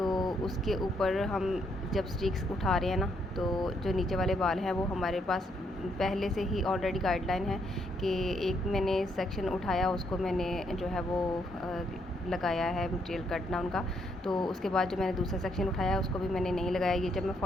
उसके ऊपर हम जब स्टिक्स उठा रहे हैं ना तो जो नीचे वाले बाल हैं वो हमारे पास पहले से ही ऑलरेडी गाइडलाइन है कि एक मैंने सेक्शन उठाया उसको मैंने जो है वो लगाया है मटेरियल कट डाउन का। तो उसके बाद जो मैंने दूसरा सेक्शन उठाया उसको भी मैंने नहीं लगाया। ये जब मैं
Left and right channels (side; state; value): both; normal; correlation 0.74